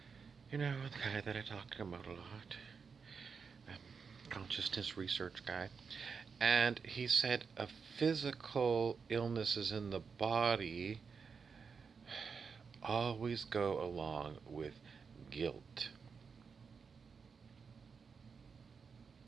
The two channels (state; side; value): quieter; left; 5.6 dB